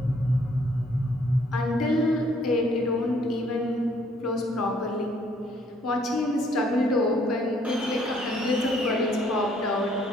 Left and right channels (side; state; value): both; normal; correlation 0.65